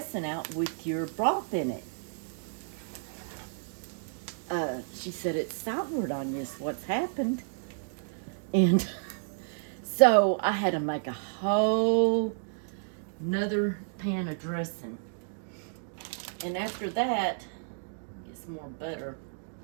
out with your broth in it. She said, it's soured on you is what's happened. And so I had to make a whole another pan of dressing. And after that, get some more butter.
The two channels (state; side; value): silent; left; digital silence